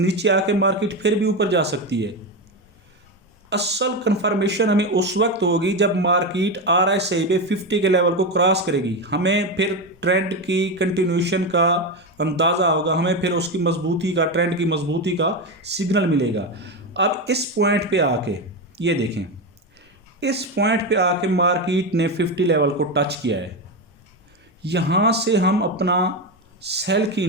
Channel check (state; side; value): normal; both; correlation 0.15